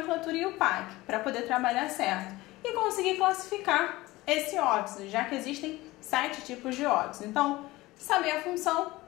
e o PAC, para poder trabalhar certo. E conseguir classificar esse óxido, já que existem 7 tipos de óxido. Então, saber a função,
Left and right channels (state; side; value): quieter; right; 19.4 dB